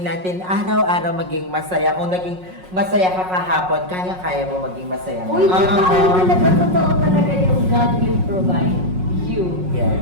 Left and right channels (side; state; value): left; late; 5.5 ms